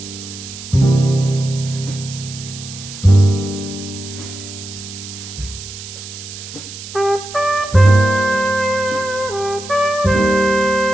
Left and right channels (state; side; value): noise; right; hiss, 12 dB below the sound